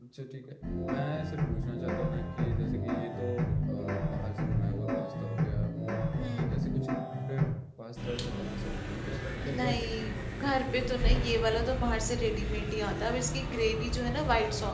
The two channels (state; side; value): identical; both; correlation 1.00